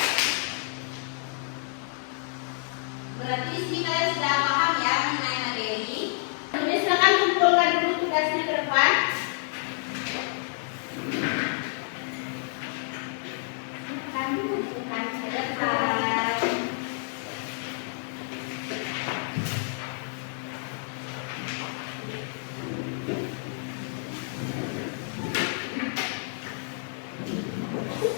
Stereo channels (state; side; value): silent; right; 59 dB below the other